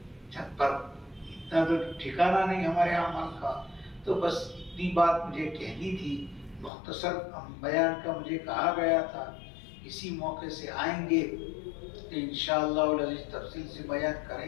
چھت پر، اتنا تو ٹھکانہ نہیں ہمارے اعمال کا۔ تو بس اتنی بات مجھے کہنی تھی، مختصر بیان کا مجھے کہا گیا تھا، اسی موقع سے آئیں گے تو انشاءاللہ العزیز تفصیل سے بیان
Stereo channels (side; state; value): right; drops out; at 6.7 s